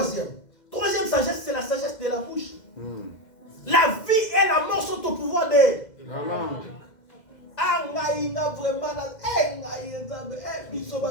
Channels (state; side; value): late; right; 2.0 ms